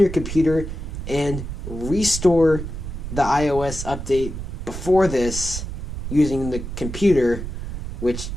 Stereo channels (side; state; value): right; noise; rumble, 7 dB below the sound